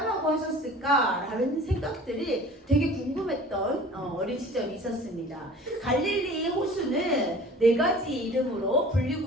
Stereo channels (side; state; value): both; normal; correlation 0.45